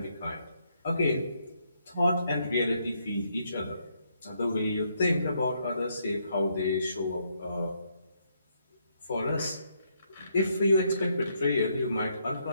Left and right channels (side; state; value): both; inverted; correlation -0.75